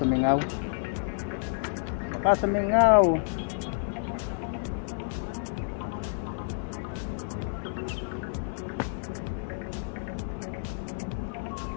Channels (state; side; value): silent; right; 56 dB below the other